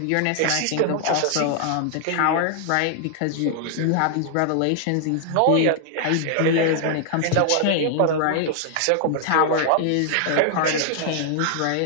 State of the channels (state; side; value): different; both; correlation 0.00